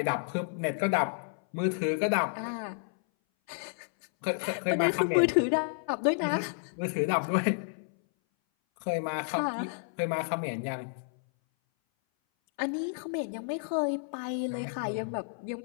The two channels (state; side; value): silent; right; 57 dB below the other